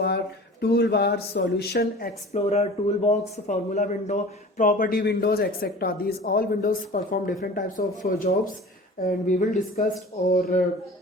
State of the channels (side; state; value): both; normal; correlation 0.40